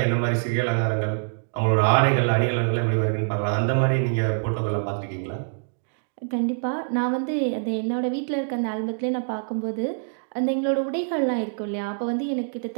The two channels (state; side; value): silent; left; digital silence